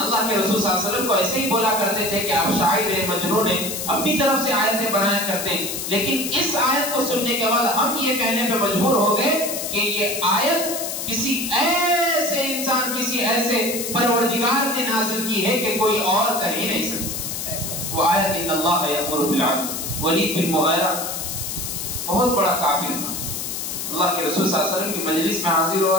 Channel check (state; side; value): noise; left; hiss, 5 dB below the sound